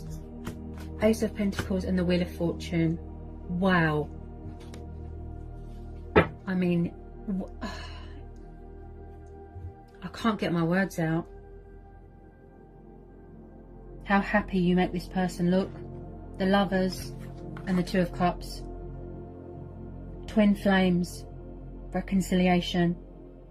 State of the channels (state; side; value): identical; both; correlation 1.00